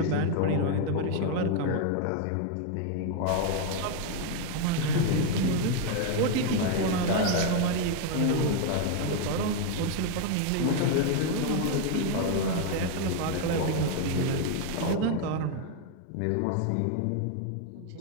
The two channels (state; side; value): different; both; correlation 0.01